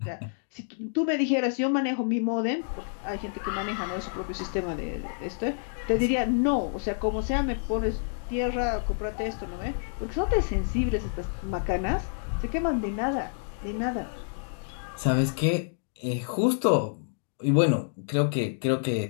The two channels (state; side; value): silent; right; digital silence